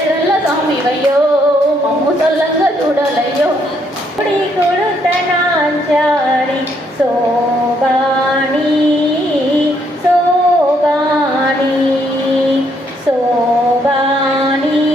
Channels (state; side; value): normal; both; correlation 0.71